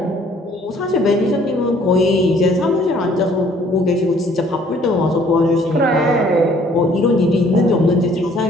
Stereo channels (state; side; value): normal; both; correlation 0.59